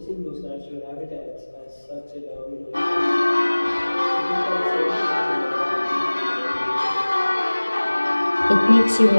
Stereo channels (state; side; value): inverted; both; correlation -1.00